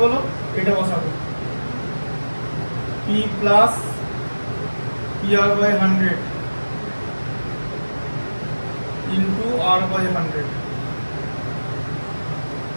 বলো, এটা বসাবো, P plus P R by 100 into R by 100,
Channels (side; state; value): both; inverted; correlation -1.00